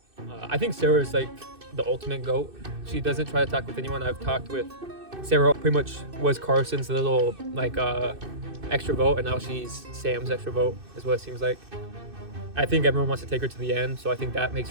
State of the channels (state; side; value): late; left; 2.6 ms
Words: I think Sarah's the ultimate GOAT. She doesn't try to talk with anyone. I've talked with Sarah, pretty much was Carson's little extra vote, and now she's Sam's extra vote is what it seems like. I think everyone wants to take her to the end, so I think that makes